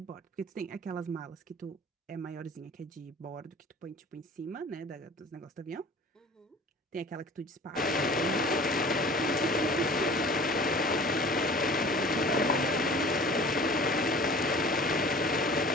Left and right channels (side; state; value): both; normal; correlation 0.44